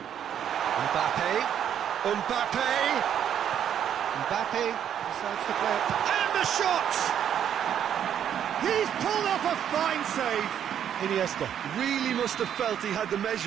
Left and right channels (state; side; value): quieter; left; 9.4 dB